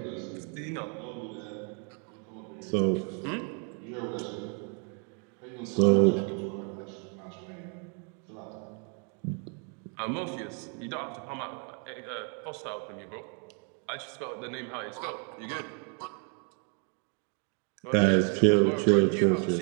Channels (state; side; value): quieter; left; 39.1 dB